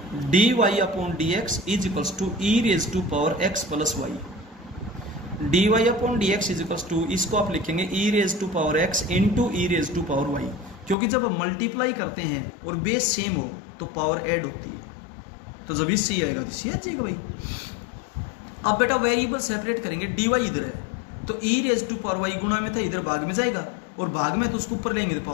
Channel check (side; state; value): right; drops out; at 11.0 s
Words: dy/dx is equals to e⁻x plus y। dy/dx is equals to, इसको आप लिखेंगे e⁻x इंटू e⁻y, क्योंकि जब मल्टीप्लाई करते हैं और बेस सेम हो तो पावर ऐड होती है, तो जब इससे आएगा तो सी आ जाएगा भाई। अब बेटा वेरिएबल सेपरेट करेंगे, dy इधर है तो e⁻y गुणा में था, इधर भाग में जाएगा, और भाग में तो उसको ऊपर लेंगे तो